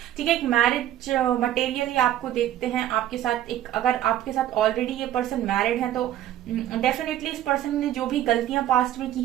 ठीक है, एक मैरिज मटेरियल आपको देखते हैं आपके साथ। एक अगर आपके साथ ऑलरेडी ये पर्सन मैरिड है तो डेफिनेटली इस पर्सन ने जो भी गलतियां पास्ट में की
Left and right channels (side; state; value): left; quieter; 12.4 dB